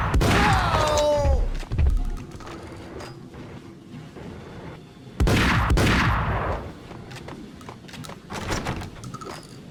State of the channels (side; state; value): both; identical; correlation 1.00